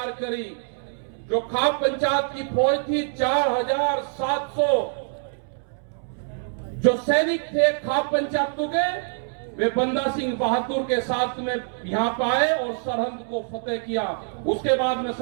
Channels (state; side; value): silent; left; 62 dB below the other